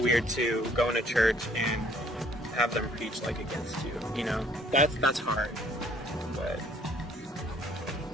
to go into church and have them preach like against you. You know, that's hard. But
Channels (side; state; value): both; normal; correlation 0.60